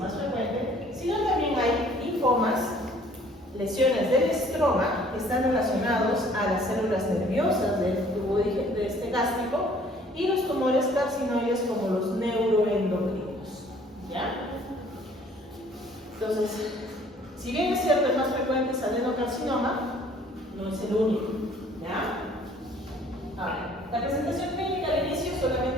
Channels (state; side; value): normal; both; correlation 0.57